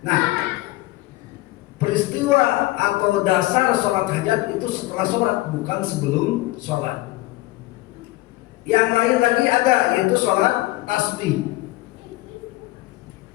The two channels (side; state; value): right; quieter; 19.3 dB